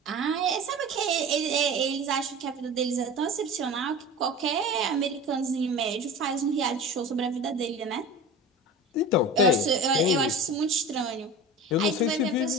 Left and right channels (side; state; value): both; normal; correlation 0.34